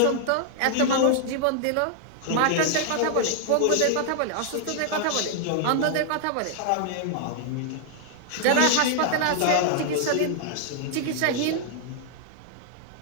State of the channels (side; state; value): both; different; correlation 0.00